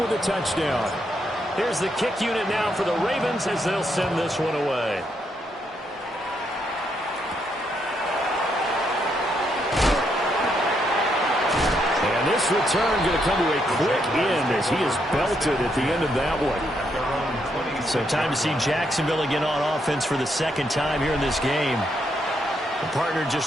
with a touchdown. Here's the kick unit now for the Ravens as they'll send this one away. And this return going to come to a quick end as he is belted at the end of that one. So time to see Jacksonville again on offense for the second time here in this game. The partner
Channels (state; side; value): normal; both; correlation 0.77